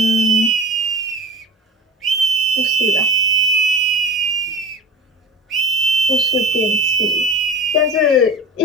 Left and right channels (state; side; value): normal; both; correlation 0.36